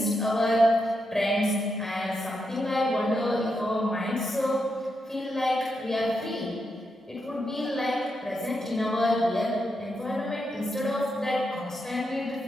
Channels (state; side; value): normal; both; correlation 0.84